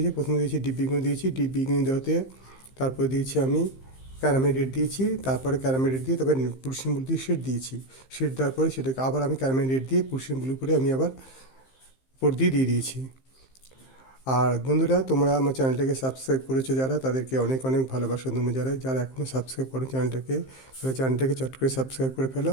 প্রথমে দিয়েছি ডিপ বেগুনি দিয়েছি। ডিপ বেগুনি দেওয়াতে তারপরে দিয়েছি আমি ক্যারামেল রেড দিয়েছি। তারপরে ক্যারামেল রেড দিয়ে তারপরে পুরসিয়ান ব্লু দিয়ে শেড দিয়েছি। শেড দেওয়ার পরে সেটাকে আবার আমি ক্যারামেল রেড দিয়ে পুরসিয়ান ব্লু করে আমি আবার উপর দিয়ে দিয়েছি। আর বন্ধুরা, তোমরা আমার চ্যানেলটাকে সাবস্ক্রাইব করেছো যারা, তাদেরকে অনেক অনেক ভালোবাসা। তোমরা যারা এখনও সাবস্ক্রাইব করো চ্যানেলটাকে, তাহলে চ্যানেলটাকে চট করে সাবস্ক্রাইব করে ফেলো।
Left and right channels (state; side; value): late; right; 15 ms